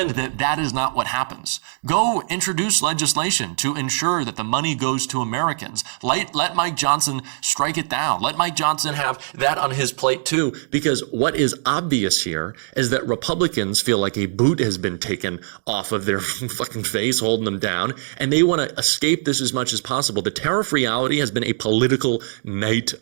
that that is not what happens. Go introduce legislation to ensure that the money goes to Americans. Let Mike Johnson strike it down. Let Mike Johnson have that on his plate too, because what is obvious here is that Republicans feel like a boot has been taken off of their fucking face, holding them down, and they want to escape this as much as possible. The tariff reality has been a political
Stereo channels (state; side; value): silent; left; digital silence